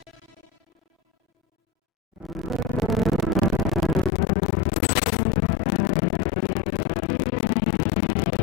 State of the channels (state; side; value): drops out; right; at 4.1 s